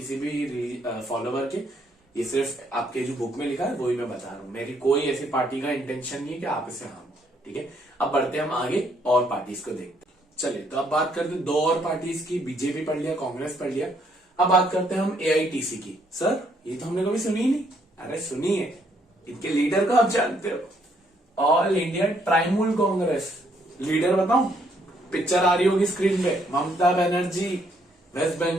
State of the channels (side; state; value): both; normal; correlation 0.70